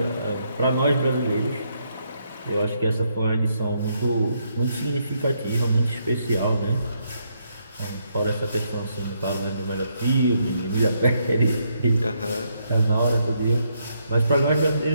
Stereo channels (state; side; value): inverted; both; correlation -0.76